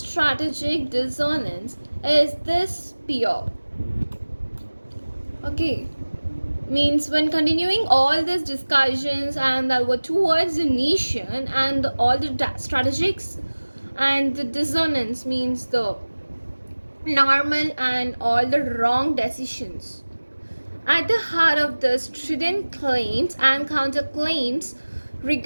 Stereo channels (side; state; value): both; inverted; correlation -1.00